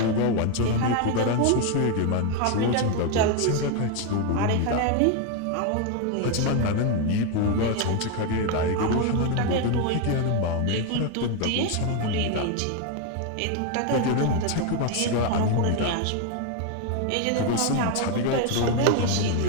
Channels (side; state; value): both; different; correlation 0.01